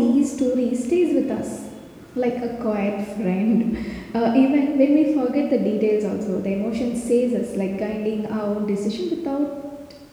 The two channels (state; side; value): identical; both; correlation 1.00